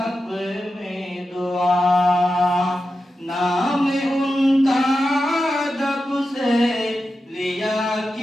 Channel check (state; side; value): normal; both; correlation 0.91